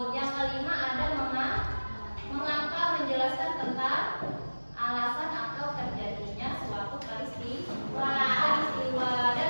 Yang kelima ada mengapa, menjelaskan tentang alasan atau terjadinya suatu peristiwa. Dan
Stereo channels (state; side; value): inverted; both; correlation -1.00